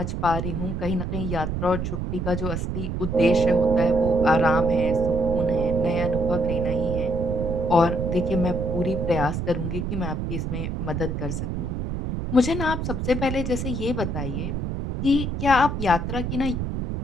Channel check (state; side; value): noise; right; rumble, 3 dB below the sound